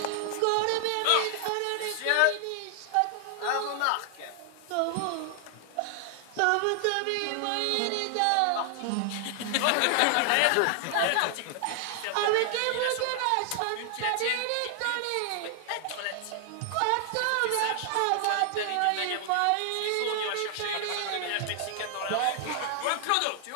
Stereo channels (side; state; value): both; different; correlation 0.00